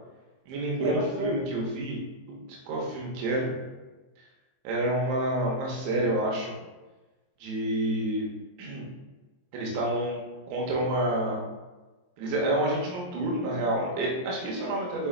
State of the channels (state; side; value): late; left; 23 ms